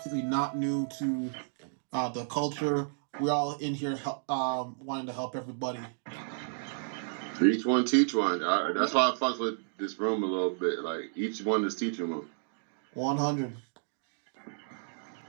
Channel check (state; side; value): silent; left; digital silence